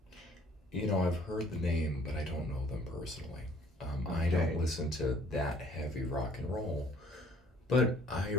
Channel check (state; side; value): normal; both; correlation 0.59